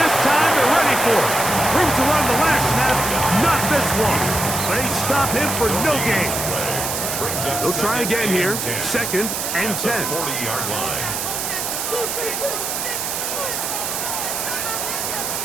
time they're ready for it. Room to run the last snap, not this one. They stop him for no gain. They'll try again here, 2nd and 10. 40-yard line.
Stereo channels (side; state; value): right; noise; hiss, 2 dB below the sound